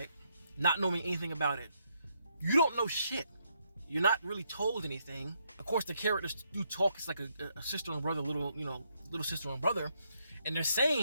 not knowing anything about it, you don't know shit. You're not really told anything. Of course, the characters do talk. It's like a sister and brother, little sister and brother, and they're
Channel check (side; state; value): both; inverted; correlation -0.77